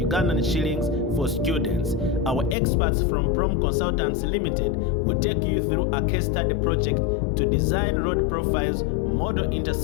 shillings for students. Our experts from Prom Consultants Limited will take you through a case study project to design road profiles, model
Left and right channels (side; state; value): right; drops out; at 2.6 s